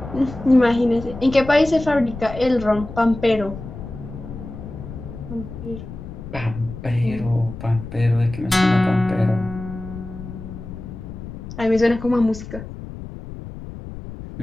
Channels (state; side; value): noise; left; rumble, 11 dB below the sound